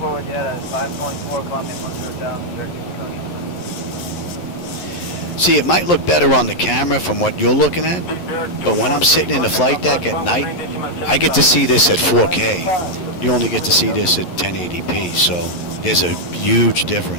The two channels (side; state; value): right; late; 11 ms